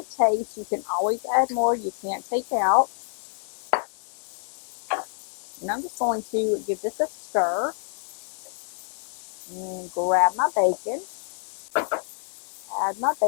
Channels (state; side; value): silent; right; 60 dB below the other